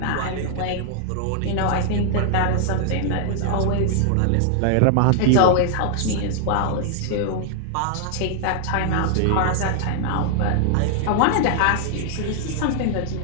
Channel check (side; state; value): both; different; correlation 0.00